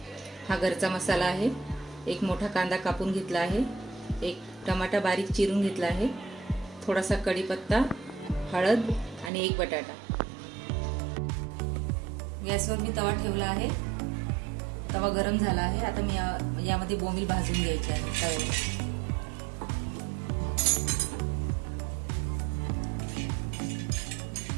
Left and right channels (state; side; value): drops out; left; at 9.3 s